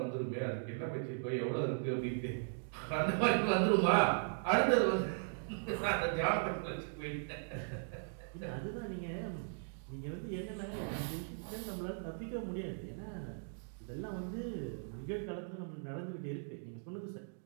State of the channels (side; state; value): left; silent; digital silence